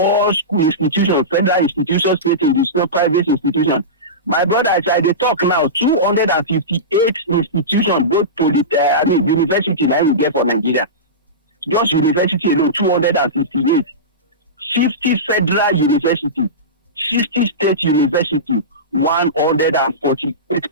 school institutions, federal institutions, state institutions, private institutions. My brother, as I dey talk now, 258 institutions, both university now we get for Nigeria. Just university alone, 258. 50 federal university, 60 state university,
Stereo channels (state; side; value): normal; both; correlation -0.19